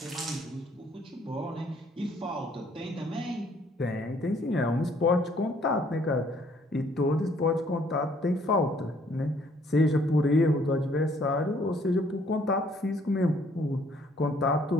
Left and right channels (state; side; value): normal; both; correlation 0.63